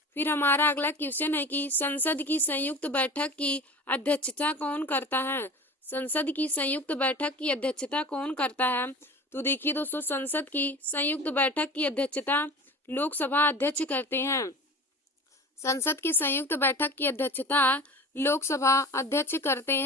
फिर हमारा अगला क्वेश्चन है कि संसद की संयुक्त बैठक की अध्यक्षता कौन करता है। संसद की संयुक्त बैठक की अध्यक्षता कौन करता है। तो देखिए दोस्तों, संसद की संयुक्त बैठक की अध्यक्षता लोकसभा अध्यक्ष करते हैं। संसद की संयुक्त बैठक की अध्यक्षता लोकसभा अध्यक्ष करते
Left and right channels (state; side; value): normal; both; correlation 0.36